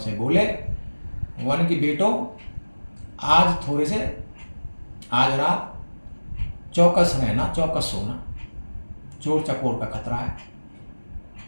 बोले, वन की बेटो, आज रात चौकस रहना, चौकस सोना, चोर चकोर का खतरा है।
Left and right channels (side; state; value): both; inverted; correlation -1.00